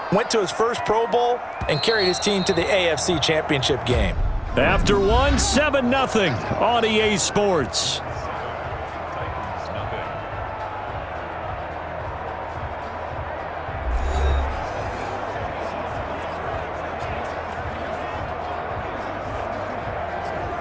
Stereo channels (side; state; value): both; identical; correlation 1.00